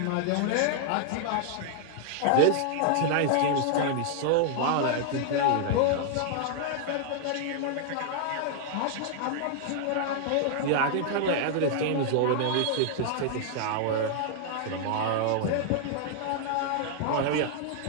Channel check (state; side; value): different; both; correlation -0.01